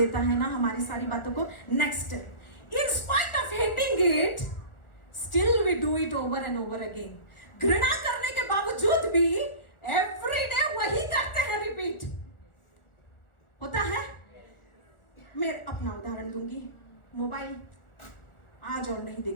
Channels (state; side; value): late; right; 1.4 ms